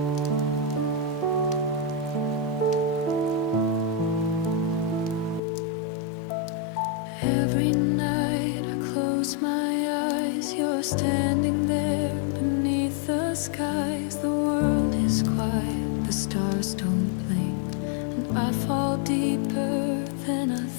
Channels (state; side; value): drops out; right; at 5.4 s